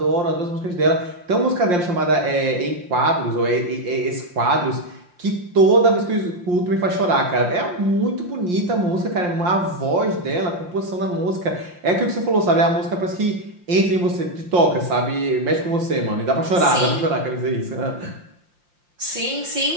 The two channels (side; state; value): left; late; 5.7 ms